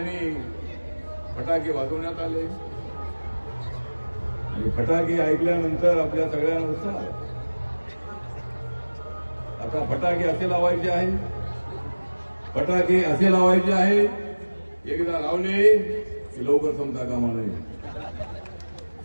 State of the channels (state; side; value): inverted; both; correlation -1.00